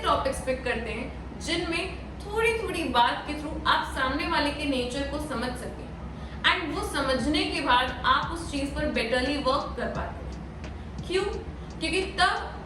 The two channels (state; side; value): identical; both; correlation 1.00